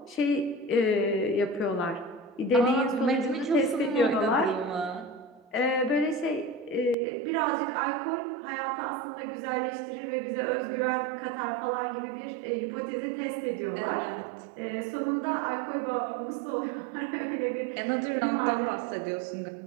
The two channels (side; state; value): left; drops out; at 7.0 s